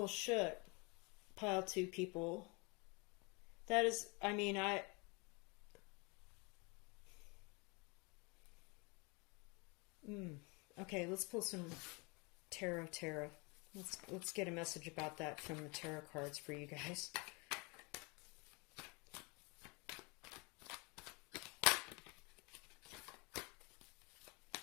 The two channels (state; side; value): quieter; right; 29.5 dB